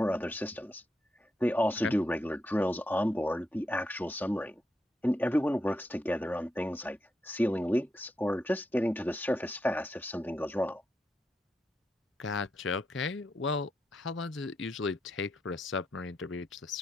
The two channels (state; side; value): normal; both; correlation 0.83